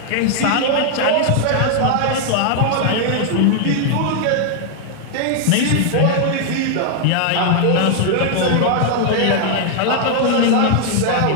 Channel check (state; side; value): different; both; correlation 0.00